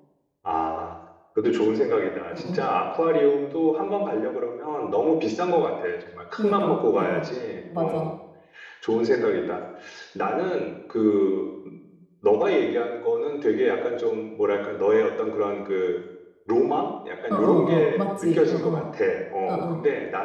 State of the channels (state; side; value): identical; both; correlation 1.00